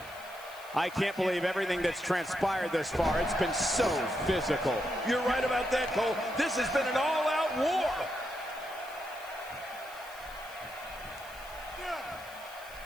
I can't believe everything that's transpired this far. It's been so physical. You're right about that, Cole. This has been an all-out war.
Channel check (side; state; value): left; noise; hiss, 20 dB below the sound